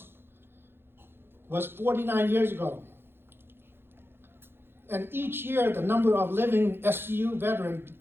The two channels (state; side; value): late; left; 0.11 ms